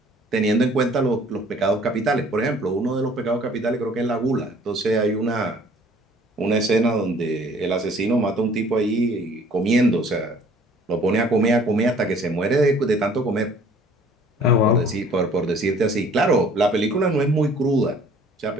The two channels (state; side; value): normal; both; correlation 0.54